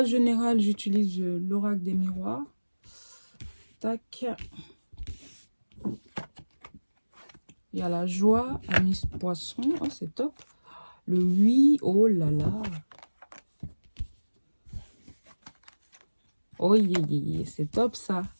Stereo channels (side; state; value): both; inverted; correlation -1.00